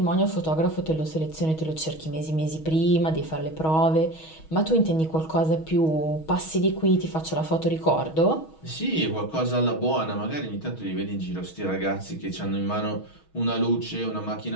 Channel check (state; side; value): late; right; 6.3 ms